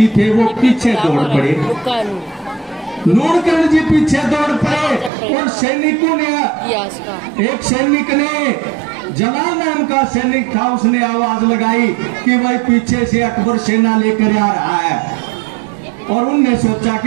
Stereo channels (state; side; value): drops out; left; at 5.1 s